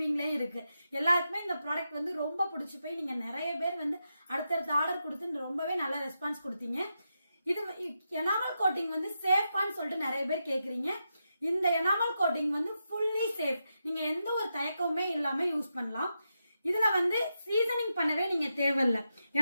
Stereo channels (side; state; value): both; inverted; correlation -0.86